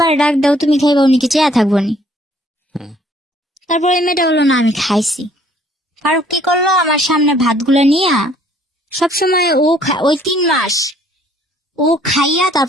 ডাক দাও, তুমি খাইবা, উনি কি চেয়া থাকবো নি। হুম তারপরে এই মেয়েটা বললো না আমি খাইছি। ফারুক কি করলো, আমার সামনে ভাতগুলো নিয়ে সবসময় ওই 3 মাস ও খাইয়া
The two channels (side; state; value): both; normal; correlation 0.61